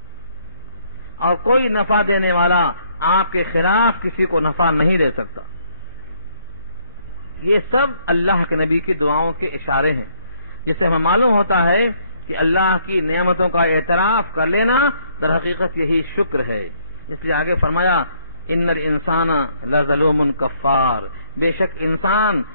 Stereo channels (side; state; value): both; inverted; correlation -0.69